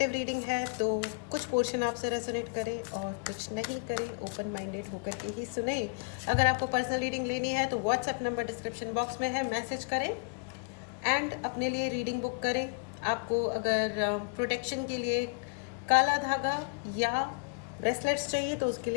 रीडिंग है तो कुछ पोर्शन आपसे रेजोनेट करे और कुछ नहीं करे। ओपन माइंडेड होकर के ही सुने। अगर आपको पर्सनल रीडिंग लेनी है तो व्हाट्सएप नंबर डिस्क्रिप्शन बॉक्स में है, मैसेज करें एंड अपने लिए रीडिंग बुक करें। आपको अगर प्रोटेक्शन के लिए काला धागा या ब्रेसलेट्स चाहिए तो उसके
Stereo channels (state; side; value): quieter; right; 33.2 dB